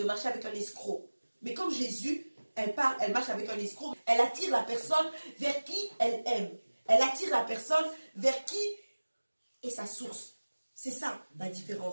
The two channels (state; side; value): inverted; both; correlation -1.00